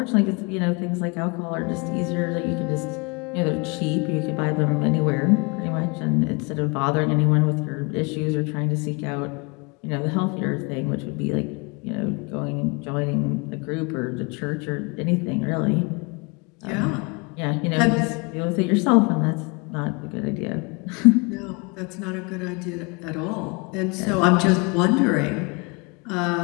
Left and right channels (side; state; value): right; quieter; 29.7 dB